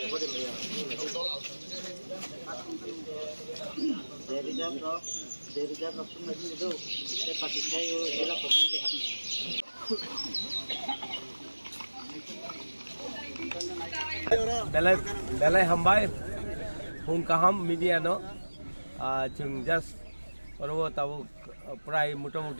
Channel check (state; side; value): inverted; both; correlation -1.00